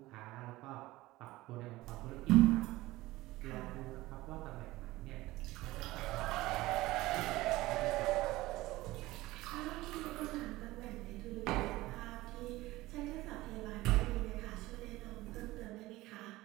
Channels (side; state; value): left; quieter; 18.5 dB